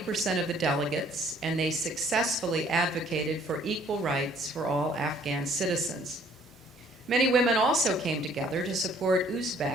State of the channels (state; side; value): normal; both; correlation 0.60